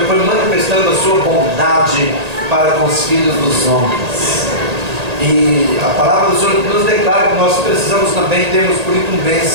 foi manifestando a sua bondade para com os filhos dos homens. E a palavra do Senhor nos declara que nós precisamos também, temos por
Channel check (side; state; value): left; late; 1.8 ms